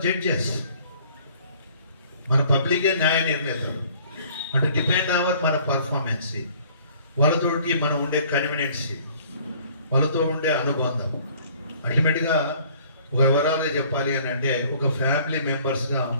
judges. మన పబ్లికే న్యాయ నిర్ణేతలు. అంటే డిపెండ్ అవర్ మన పర్ఫార్మెన్స్, వాళ్ళతోటి మనం ఉండే కన్వీనియన్సీ, వాళ్ళతో ఉండే అనుబంధం. అల్టిమేట్గా ఒక వివరాలుగా చెప్పాలి అని అంటే ఒక ఫ్యామిలీ మెంబర్స్గా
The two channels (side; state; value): both; inverted; correlation -0.56